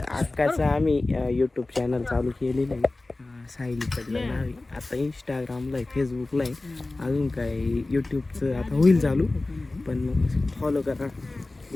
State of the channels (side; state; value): right; quieter; 3.0 dB